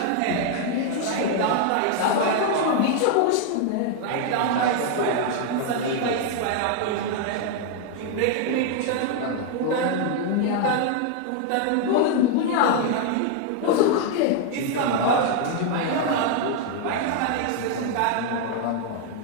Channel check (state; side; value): different; both; correlation 0.00